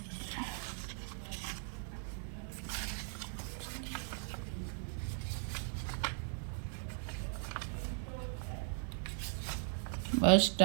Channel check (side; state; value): left; silent; 52 dB below the other